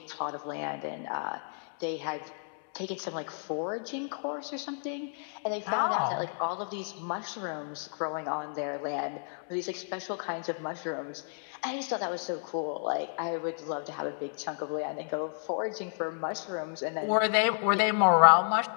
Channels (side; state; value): right; silent; 57 dB below the other